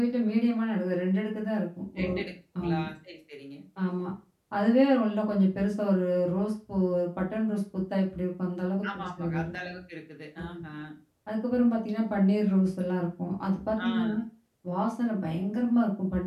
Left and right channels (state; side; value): identical; both; correlation 1.00